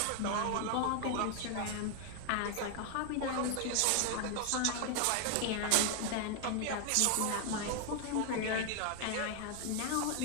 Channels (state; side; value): different; both; correlation 0.00